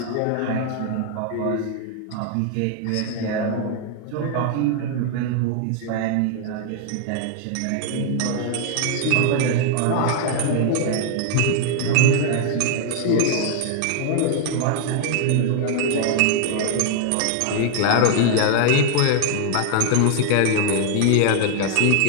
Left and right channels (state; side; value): different; both; correlation 0.00